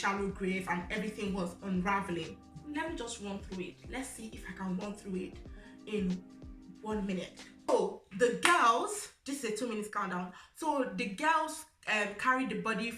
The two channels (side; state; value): both; identical; correlation 1.00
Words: grave and everything was unraveling. Let me just run through it. Let's see if I can run through it in 1 minute. So the girls, this is a 2 minutes countdown. So the girls carried the body